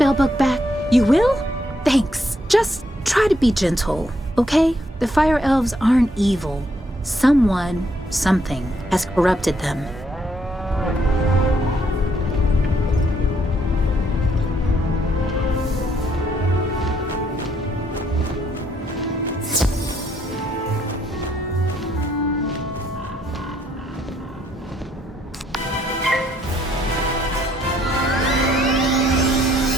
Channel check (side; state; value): both; normal; correlation 0.72